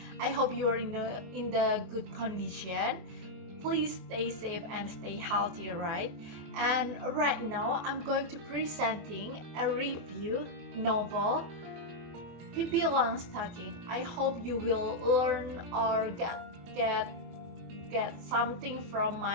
I hope you are in the good condition. Please stay safe and stay healthy, right? And right now, I'm going to presenting a review novel, Pippi Longstocking. I hope you will learn or get something from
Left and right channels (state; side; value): late; left; 24 ms